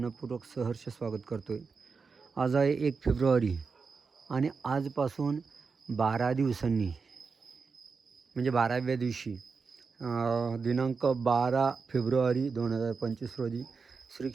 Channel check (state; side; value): quieter; left; 5.0 dB